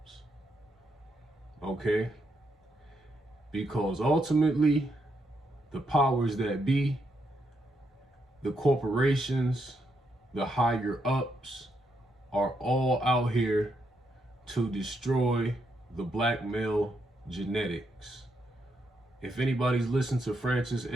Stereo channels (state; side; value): normal; both; correlation 0.79